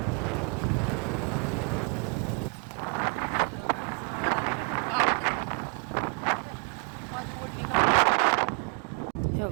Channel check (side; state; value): left; quieter; 36.4 dB